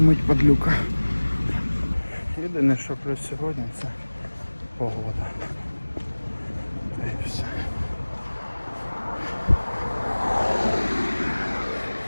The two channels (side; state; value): both; inverted; correlation -1.00